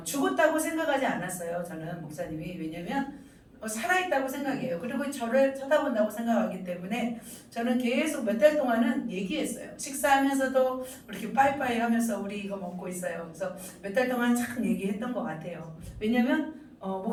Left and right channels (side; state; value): both; identical; correlation 1.00